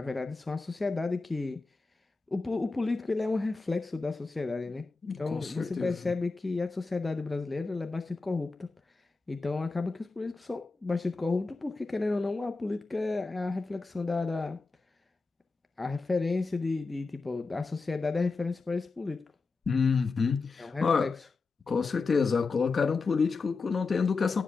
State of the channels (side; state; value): right; quieter; 4.0 dB